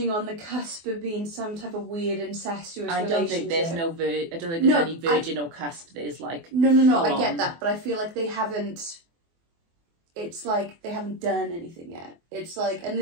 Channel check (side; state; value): left; late; 24 ms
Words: on the cusp of being some type of weird incestuous relationship. I don't think there's any virgin or cusp. There's like... No, I get that, but I feel like they haven't... It's like they haven't done anything yet. It's like, and